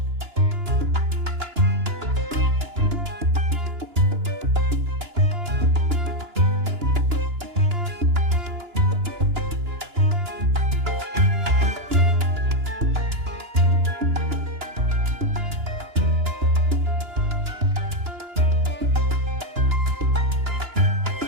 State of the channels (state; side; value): late; left; 2.9 ms